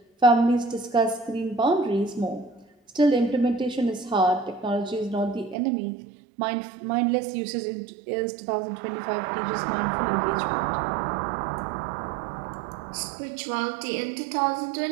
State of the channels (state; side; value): drops out; left; at 5.6 s